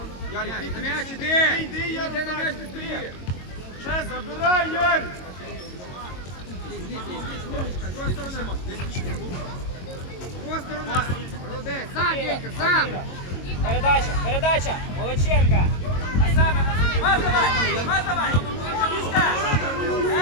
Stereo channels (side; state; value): right; late; 22 ms